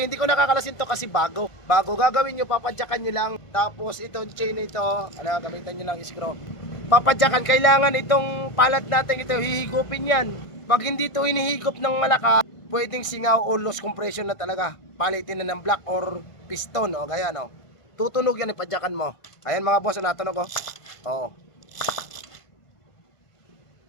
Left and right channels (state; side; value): late; right; 1.5 ms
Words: hindi ko nakakalasin to kasi bago. Bago gagawin nyo, papadyakan nyo lang. Tapos itong chain ito, gamitan nyo lang screw. Papadyakan, kailangan itong palad natin ito, hihigupin yan. Pag hindi ito hinihigop ng malakas, pwedeng singaw o loss compression na talaga. Palitin na ng block or piston, o gaya no. Tutunog yan, ipadyakan mo. Ayan mga boss, natunog ko. Oo.